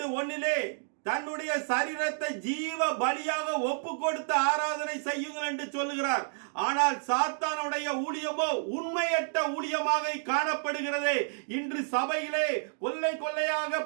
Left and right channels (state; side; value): silent; left; digital silence